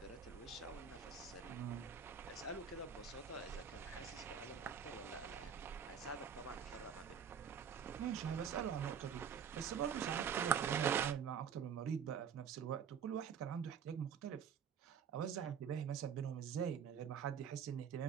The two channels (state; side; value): quieter; left; 7.5 dB